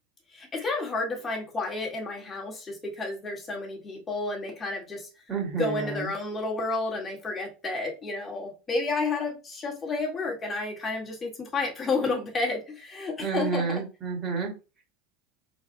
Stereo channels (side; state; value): both; normal; correlation 0.43